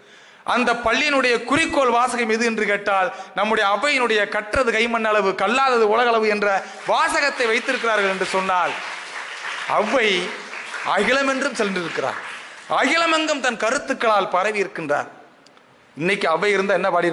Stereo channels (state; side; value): identical; both; correlation 1.00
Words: அந்த பள்ளியினுடைய குறிக்கோள் வாசகம் எது என்று கேட்டால், நம்முடைய அவையினுடைய கற்றது கைமண் அளவு, கல்லாதது உலகளவு என்ற வாசகத்தை வைத்திருக்கிறார்கள் என்று சொன்னால், அவ்வை அகிலம் என்றும் சென்றிருக்கிறார். அகிலமெங்கும் தன் கருத்துக்களால் பரவி இருக்கின்றார். இன்னைக்கு அவை இருந்தால் என்ன